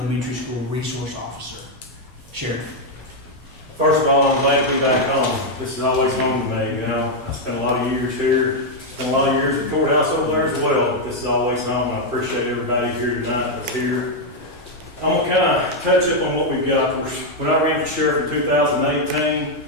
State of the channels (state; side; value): normal; both; correlation 0.01